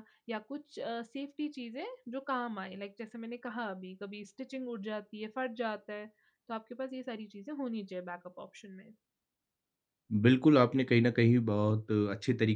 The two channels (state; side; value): identical; both; correlation 1.00